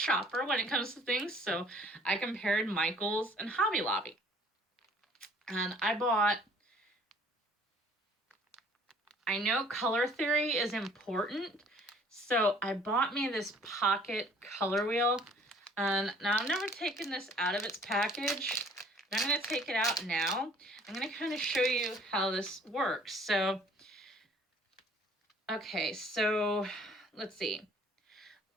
when it comes to things. So I compared Michael's and Hobby Lobby. And I know color theory is important, so I bought me this pocket color wheel. And now I've never taken this out of its package, but I'm going to take it out now. I'm going to kind of show you how this works. So, okay, so let's see.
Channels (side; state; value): both; normal; correlation 0.55